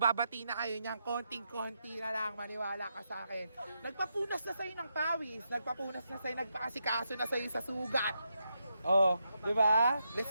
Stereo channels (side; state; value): both; inverted; correlation -0.83